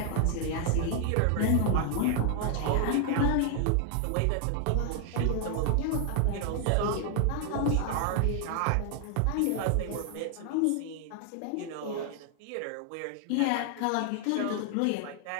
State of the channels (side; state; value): both; different; correlation 0.00